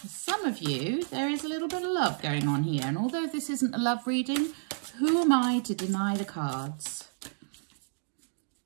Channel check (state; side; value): silent; left; digital silence